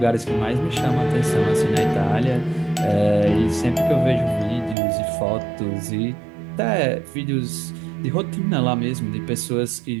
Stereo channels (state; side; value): drops out; left; at 4.8 s